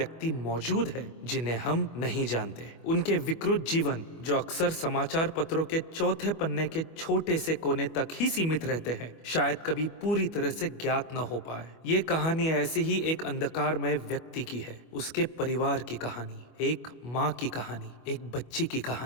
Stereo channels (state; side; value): late; right; 25 ms